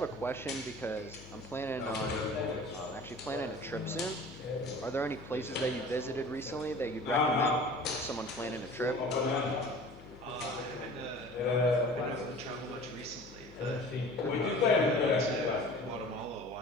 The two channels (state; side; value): noise; left; hum, 20 dB below the sound